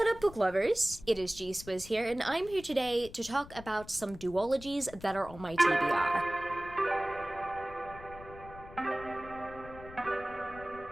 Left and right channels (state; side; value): noise; left; rumble, 17 dB below the sound